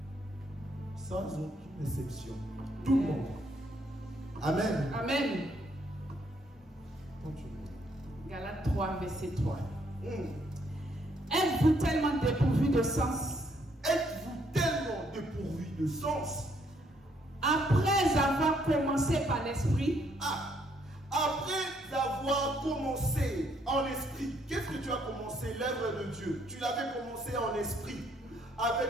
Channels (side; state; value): both; normal; correlation 0.70